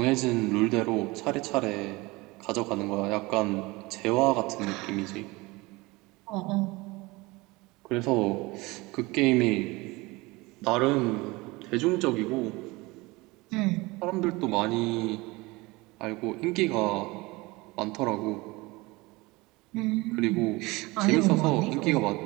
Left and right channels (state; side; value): quieter; left; 22.9 dB